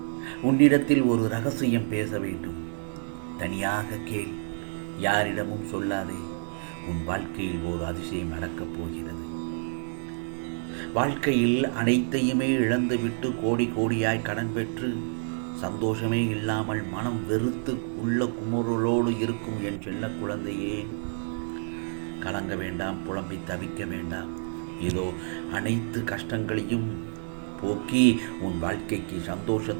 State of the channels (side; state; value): left; silent; digital silence